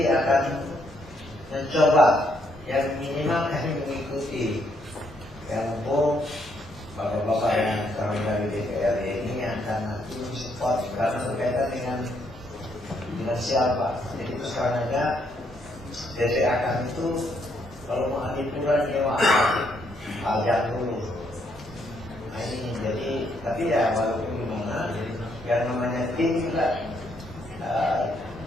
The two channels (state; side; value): normal; both; correlation 0.73